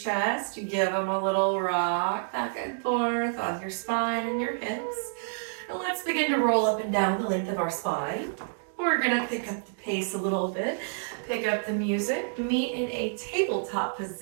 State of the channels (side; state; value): left; silent; digital silence